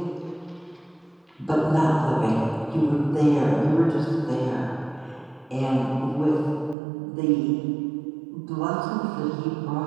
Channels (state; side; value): drops out; left; at 6.8 s